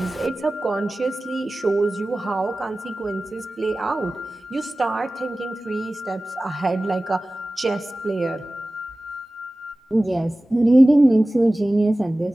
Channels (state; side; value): normal; both; correlation 0.97